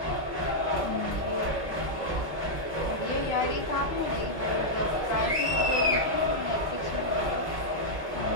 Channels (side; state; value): both; normal; correlation -0.05